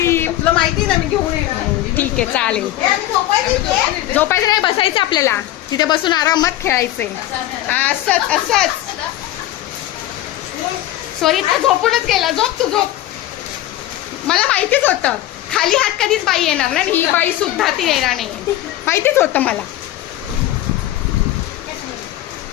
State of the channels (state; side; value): quieter; right; 14.4 dB